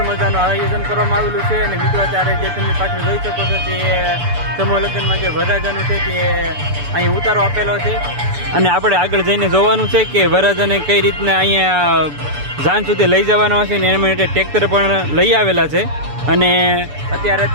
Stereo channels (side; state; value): left; late; 6.9 ms